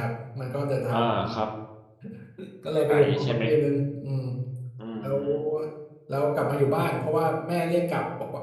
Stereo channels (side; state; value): both; identical; correlation 1.00